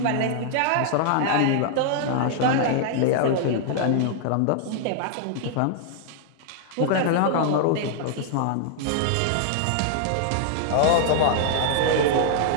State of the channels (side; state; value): both; different; correlation -0.01